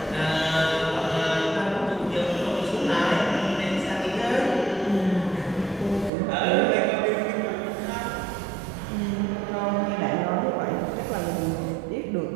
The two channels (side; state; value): left; drops out; at 6.1 s